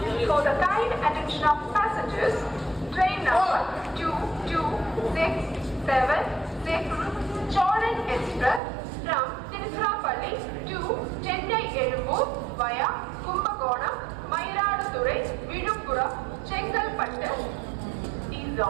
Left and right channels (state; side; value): drops out; left; at 8.6 s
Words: Cholan Express from Tiruchirappalli to Chennai Ezhumur via Kumbakonam, Mayiladuthurai, Viluppuram, Chengalpattu is